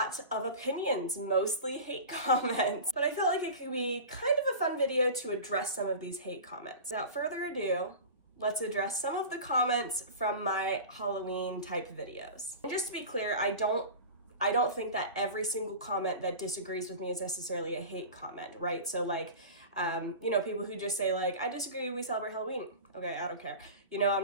of opinions, mostly hate comments, but I felt like it could be kind of a fun video to address some of these hate comments. Without further ado, let's address some of the comments from my Halloween type videos. And just to be clear, I don't think that every single comment that disagrees with me is necessarily a hate comment, right? So people who just say I disagree, we celebrate Halloween. Okay, I don't care.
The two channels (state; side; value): inverted; both; correlation -0.33